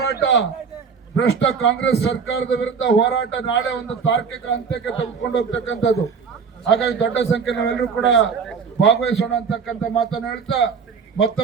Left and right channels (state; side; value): quieter; left; 5.9 dB